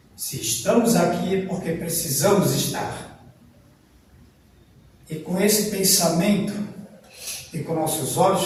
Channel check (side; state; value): both; identical; correlation 1.00